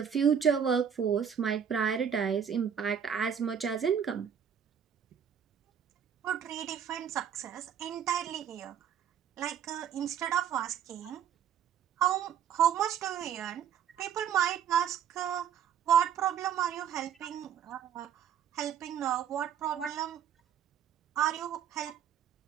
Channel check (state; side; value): quieter; left; 8.4 dB